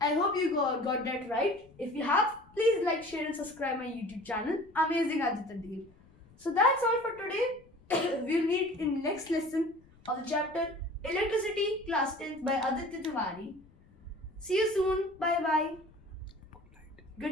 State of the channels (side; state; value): left; noise; rumble, 27 dB below the sound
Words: I hope you got that right. If you have, please like, share and subscribe my YouTube channel. Amazing Aditya Dev. So that's all for today. We'll meet in next lesson of the chapter Electricity, class 10th by Aditya Tiwari. See you soon. Bye bye.